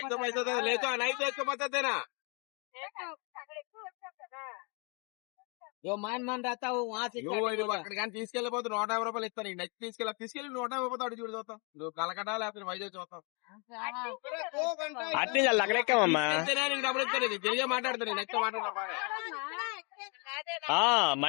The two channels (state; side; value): quieter; right; 33.9 dB